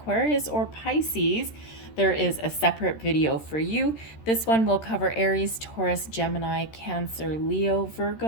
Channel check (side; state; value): right; late; 13 ms